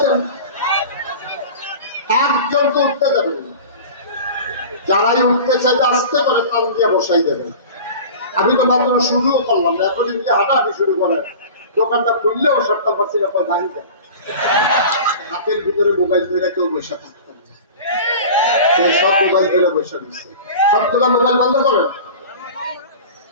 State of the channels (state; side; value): inverted; both; correlation -0.37